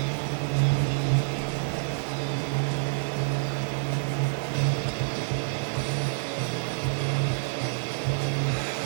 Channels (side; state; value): left; silent; digital silence